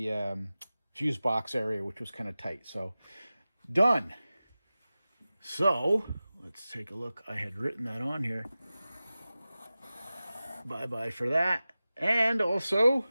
fuse box area, which was kind of tight. So, done. So, let's take a look. I had written that on here. Bye-bye for that. And also,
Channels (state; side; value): inverted; both; correlation -0.96